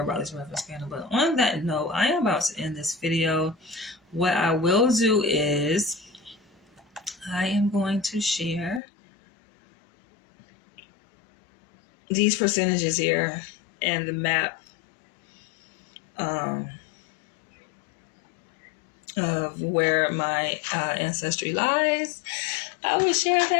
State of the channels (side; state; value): right; drops out; at 8.8 s